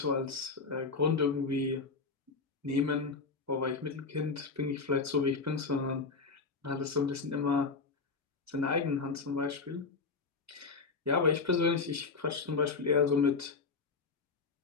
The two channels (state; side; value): quieter; right; 4.4 dB